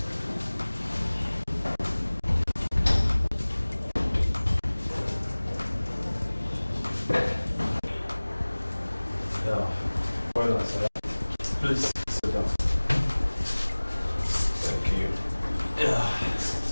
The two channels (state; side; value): inverted; both; correlation -1.00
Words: Well done, sir. Please sit down. Thank you.